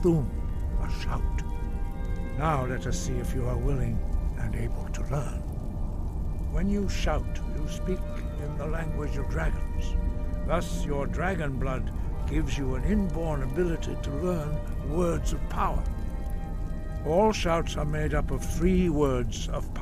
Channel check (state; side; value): identical; both; correlation 1.00